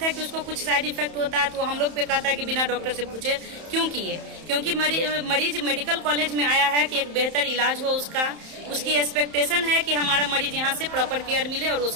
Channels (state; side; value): late; left; 31 ms